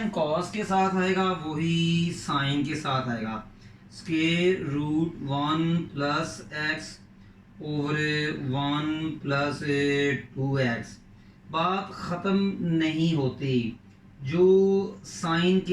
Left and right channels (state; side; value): identical; both; correlation 1.00